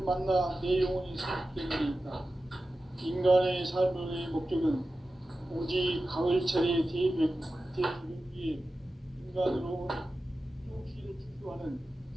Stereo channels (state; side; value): normal; both; correlation 0.94